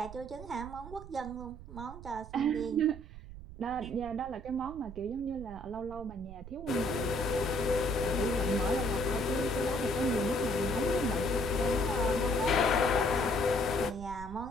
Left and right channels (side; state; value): right; noise; rumble, 14 dB below the sound